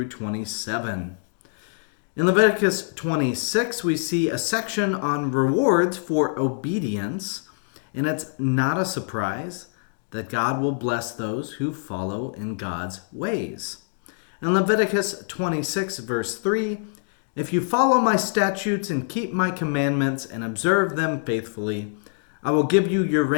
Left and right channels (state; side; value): silent; right; digital silence